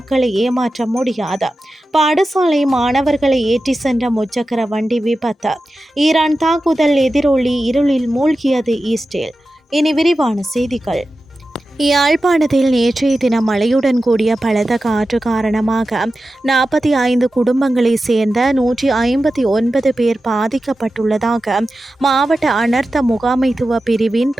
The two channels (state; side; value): normal; both; correlation 0.93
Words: ஏமாற்ற முடியாது. பாடசாலை மாணவர்களை ஏற்றி சென்ற முச்சக்கர வண்டி விபத்து. ஈரான் தாக்குதல் எதிரொலி இருளில் மூழ்கியது இஸ்ரேல். இனி விரிவான செய்திகள். யாழ்ப்பாணத்தில் நேற்றைய தினம் மழையுடன் கூடிய பலத்த காற்று காரணமாக 45 குடும்பங்களைச் சேர்ந்த 159 பேர் பாதிக்கப்பட்டுள்ளதாக மாவட்ட அனர்த்த முகாமைத்துவ பிரிவின்